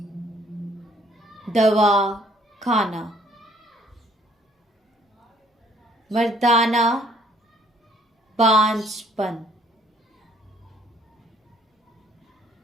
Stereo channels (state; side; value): normal; both; correlation 0.62